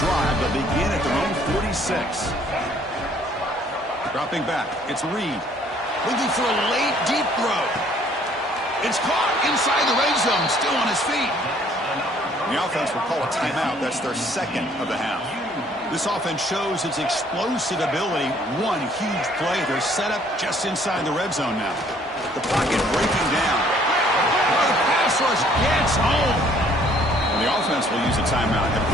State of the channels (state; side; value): normal; both; correlation 0.61